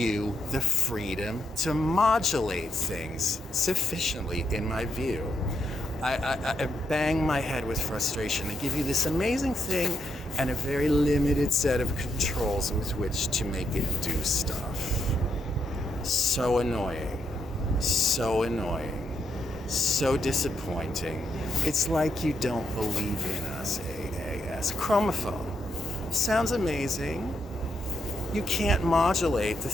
the freedom to modulate things sufficiently, in my view. I bang my head with frustration. They give you this amazing thing and a very limited set of controls with which to make it do stuff. So annoying. So annoying. So disappointing. It's like you don't believe in us, AAS. Chromophone. Sounds amazing. You can't modulate the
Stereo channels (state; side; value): normal; both; correlation 0.79